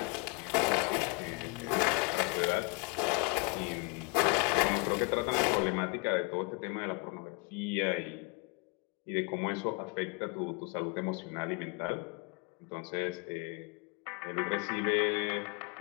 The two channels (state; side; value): quieter; right; 29.9 dB